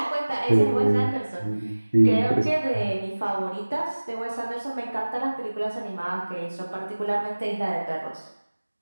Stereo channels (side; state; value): both; inverted; correlation -1.00